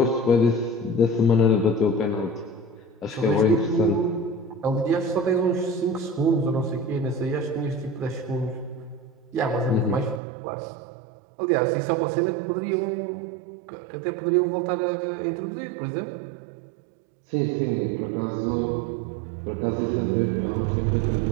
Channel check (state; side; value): drops out; left; at 10.2 s